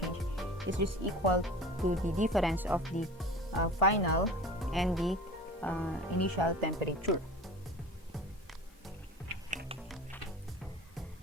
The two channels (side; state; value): both; normal; correlation 0.39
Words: is just equal to the difference of the final and the initial temperature.